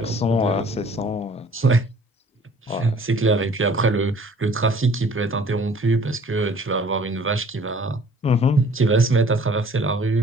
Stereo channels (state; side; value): normal; both; correlation 0.53